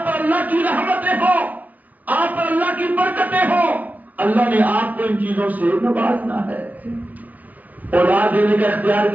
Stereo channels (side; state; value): left; late; 0.080 ms